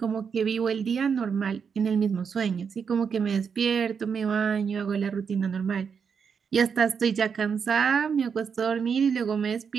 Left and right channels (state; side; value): quieter; left; 6.4 dB